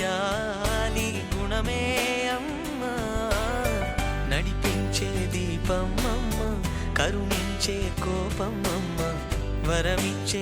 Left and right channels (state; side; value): identical; both; correlation 1.00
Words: జాలి గుణమే అమ్మ నడిపించే దీపమమ్మ కరుణించే కోపమమ్మ